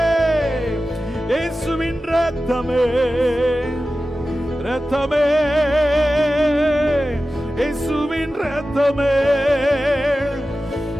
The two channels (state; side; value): normal; both; correlation 0.94